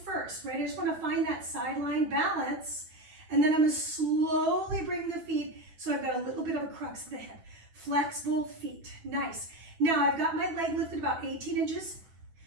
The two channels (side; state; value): left; late; 9.2 ms